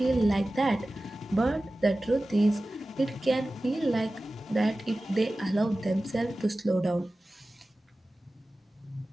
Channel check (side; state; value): both; normal; correlation 0.96